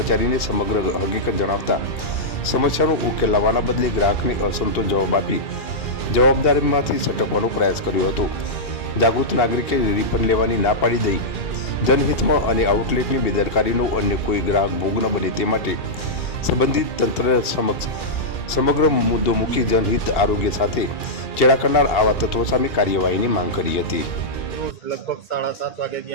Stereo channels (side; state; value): right; late; 2.7 ms